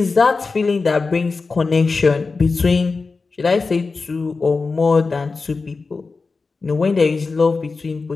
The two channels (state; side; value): quieter; right; 4.2 dB